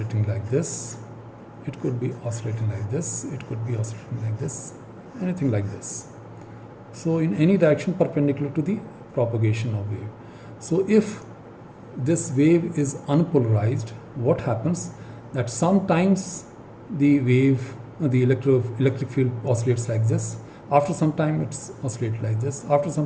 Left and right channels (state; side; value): identical; both; correlation 1.00